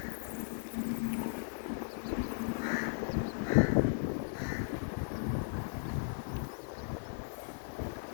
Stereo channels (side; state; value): right; silent; digital silence